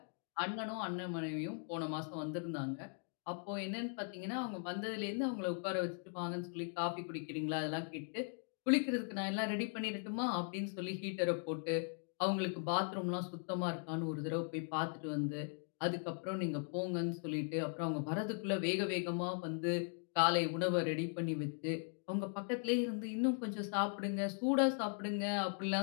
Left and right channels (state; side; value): silent; right; 52 dB below the other